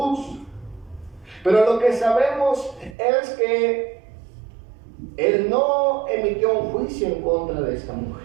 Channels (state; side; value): drops out; left; at 3.0 s